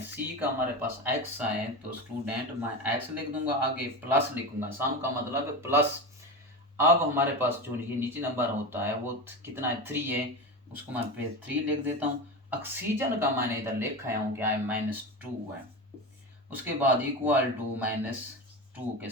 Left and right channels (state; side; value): normal; both; correlation 0.23